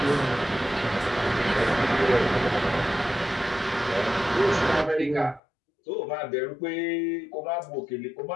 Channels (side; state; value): right; drops out; at 5.4 s